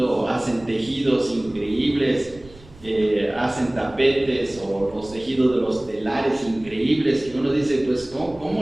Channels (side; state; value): right; noise; rumble, 22 dB below the sound